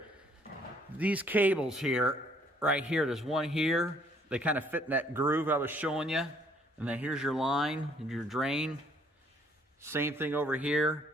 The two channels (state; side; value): normal; both; correlation 0.63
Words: These cables here, right here, there's one here. They kind of fit in that groove I was showing you. And then here's your line and your drain. Same thing over